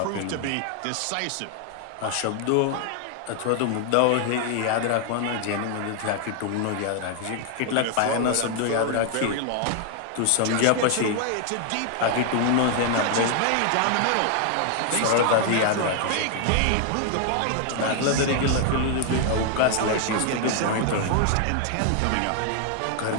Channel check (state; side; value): different; both; correlation 0.00